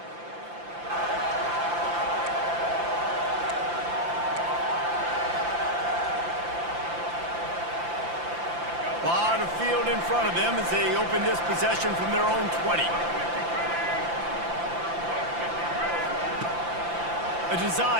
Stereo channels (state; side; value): late; left; 5.8 ms